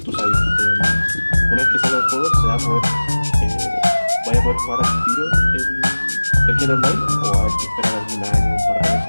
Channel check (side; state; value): both; inverted; correlation -1.00